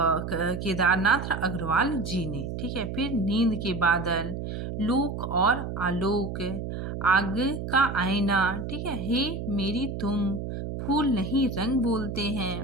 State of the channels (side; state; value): right; noise; hum, 5 dB below the sound